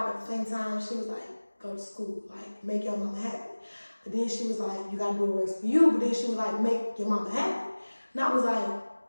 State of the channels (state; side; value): inverted; both; correlation -1.00